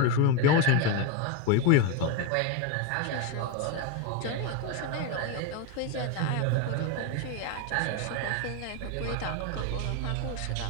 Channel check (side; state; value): both; different; correlation 0.03